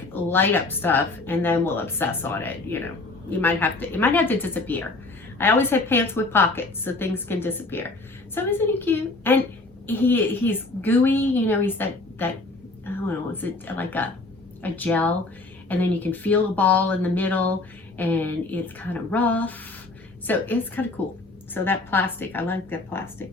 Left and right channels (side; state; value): right; quieter; 3.2 dB